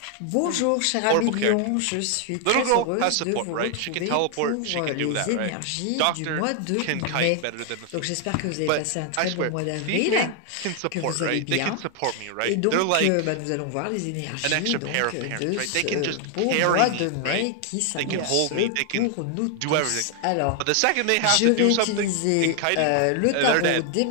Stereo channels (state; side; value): different; both; correlation 0.00